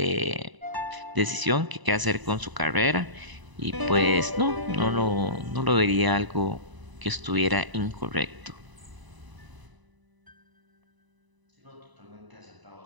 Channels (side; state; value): left; late; 1.0 ms